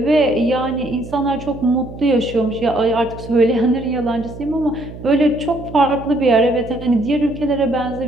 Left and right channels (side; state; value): right; noise; hum, 13 dB below the sound